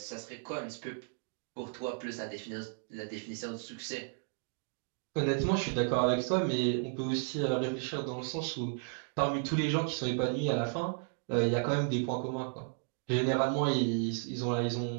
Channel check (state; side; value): silent; left; 55 dB below the other